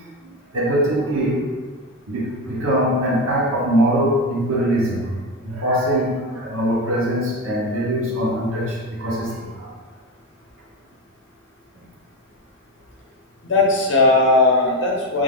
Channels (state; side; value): normal; both; correlation 0.16